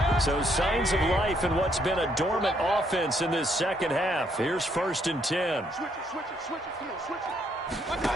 So signs of life in what's been a dormant offense in this second half. Here's 1st and 10.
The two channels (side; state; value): both; normal; correlation 0.71